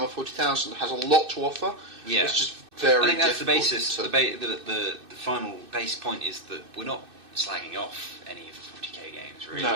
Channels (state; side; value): late; left; 2.6 ms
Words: 40,000 has a lot to offer. Yeah, it's just very. I think that's difficult the basis. The final base point is that we're not slagging off any of the 40k games. Really,